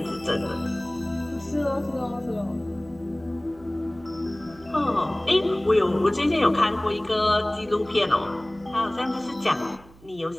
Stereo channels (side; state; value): right; noise; hum, 24 dB below the sound